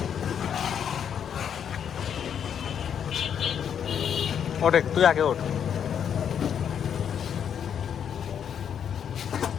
ওঠে, তুই আগে ওঠ।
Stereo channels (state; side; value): quieter; right; 8.3 dB